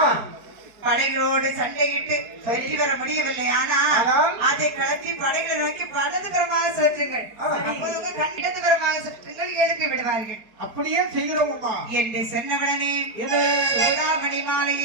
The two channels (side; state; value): left; late; 4.7 ms